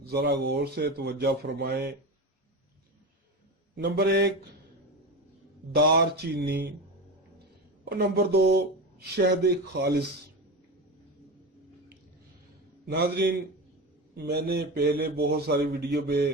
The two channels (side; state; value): both; normal; correlation 0.23